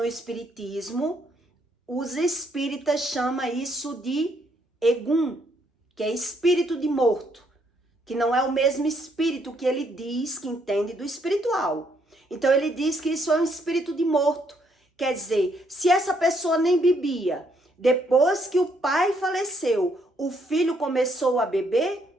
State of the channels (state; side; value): normal; both; correlation 0.72